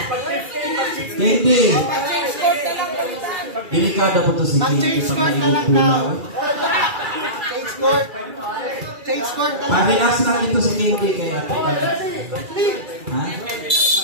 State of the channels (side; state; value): left; late; 2.4 ms